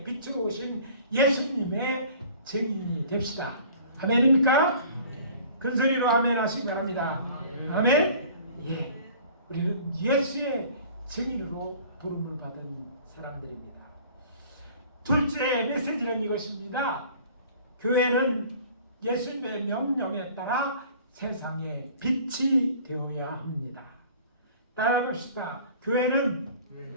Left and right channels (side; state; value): both; inverted; correlation -0.48